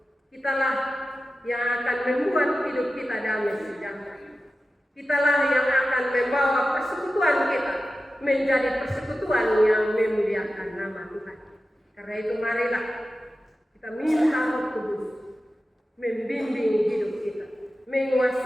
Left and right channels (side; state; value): both; normal; correlation 0.93